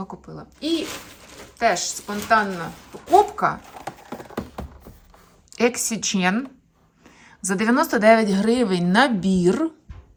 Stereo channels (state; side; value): identical; both; correlation 1.00